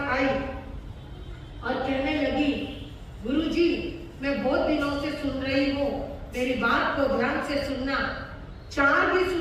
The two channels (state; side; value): identical; both; correlation 1.00